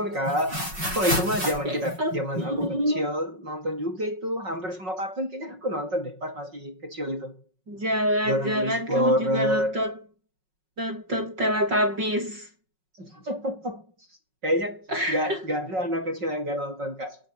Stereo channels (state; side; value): late; left; 5.4 ms